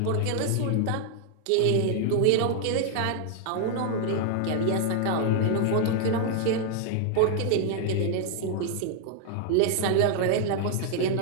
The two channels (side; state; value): both; different; correlation 0.00